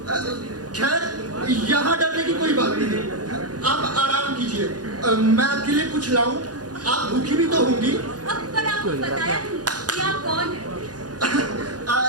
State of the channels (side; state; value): left; late; 0.69 ms